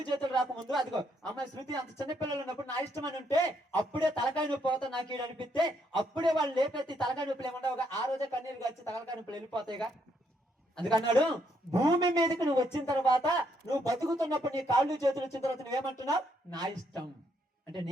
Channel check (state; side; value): normal; both; correlation 0.74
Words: చేతులు రాకముందు, అదిగో అమ్మాయి శృతి అంత చిన్నపిల్లలు ఉన్నప్పుడు నా ఇష్టం అని ఉంటే అప్పుడే తలకాయ నొప్పి పోతా నాకు ఈడు అనిపిస్తే అప్పుడే వాళ్ళు లేపెత్తి తలకాయ నొప్పులు ఏమన్నావుగా, ఆ రోజే కన్నీరు వచ్చి తలకాయ నొప్పులు వెళ్ళిపోతాయిగా. అందుకన్నాడు, భూమి మీదకి నువ్వు వచ్చిన తర్వాత, నువ్వు బతుకుతున్నప్పుడు నీ కాళ్ళు చేతులు వచ్చిన తర్వాత నువ్వేమంటున్నావు? నా ఇష్టం అంటే